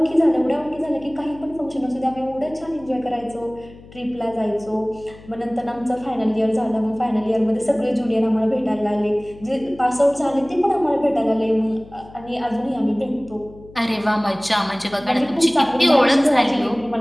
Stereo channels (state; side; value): noise; left; hum, 21 dB below the sound